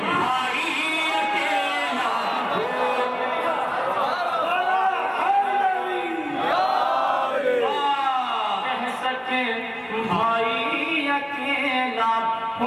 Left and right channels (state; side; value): identical; both; correlation 1.00